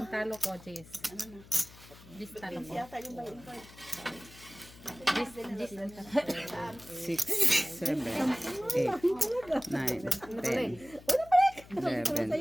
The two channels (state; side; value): noise; left; hum, 20 dB below the sound